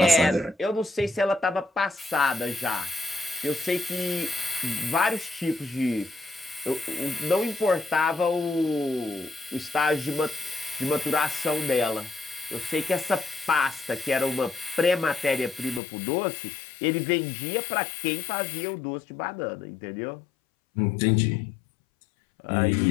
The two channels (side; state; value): right; drops out; at 15.8 s